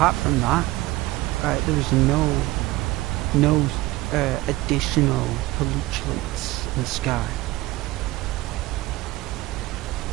from that, there was no additional pollutants in the sky.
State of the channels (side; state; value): left; quieter; 18.9 dB